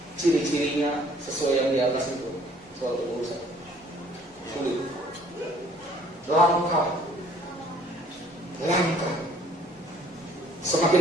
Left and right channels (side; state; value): both; normal; correlation 0.59